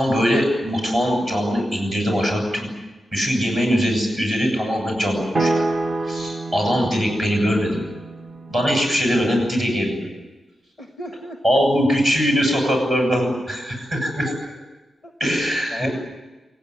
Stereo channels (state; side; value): normal; both; correlation 0.89